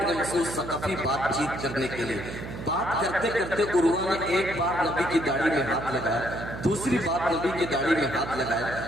مسعود ثقفی بات چیت کرنے کے لیے۔ بات کرتے کرتے عروہ نے ایک بار نبی کی داڑھی میں ہاتھ لگایا، دوسری بار نبی کی داڑھی میں ہاتھ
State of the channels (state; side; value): noise; right; hum, 9 dB below the sound